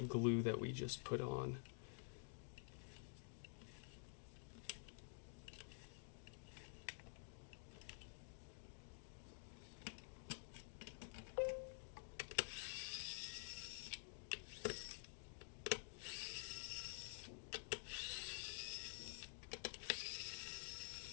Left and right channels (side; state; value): right; silent; digital silence